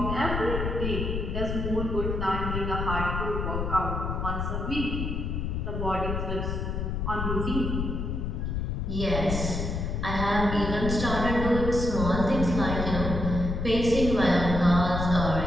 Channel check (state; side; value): noise; left; rumble, 2 dB below the sound